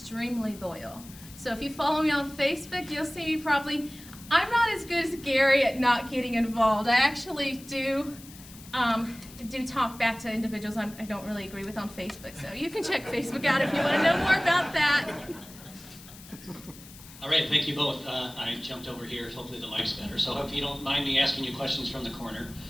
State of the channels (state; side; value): noise; left; hiss, 19 dB below the sound